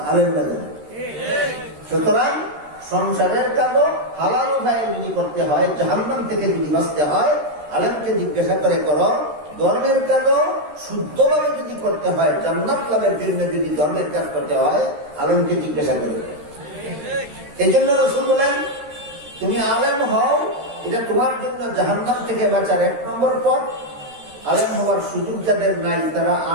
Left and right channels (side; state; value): left; late; 13 ms